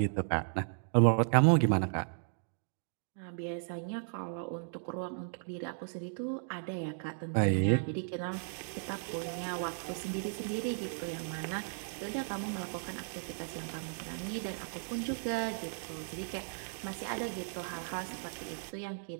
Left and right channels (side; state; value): left; silent; digital silence